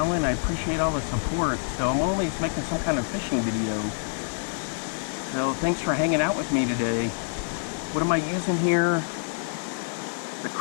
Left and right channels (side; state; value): right; silent; digital silence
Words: I appreciate all the support. So I'm always making some kind of fishing video. So thanks for hanging out with me today. What am I using here? The